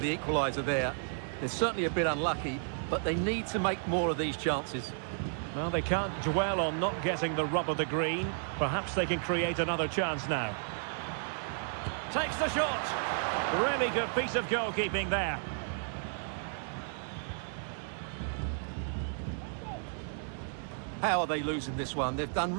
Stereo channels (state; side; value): silent; left; 56 dB below the other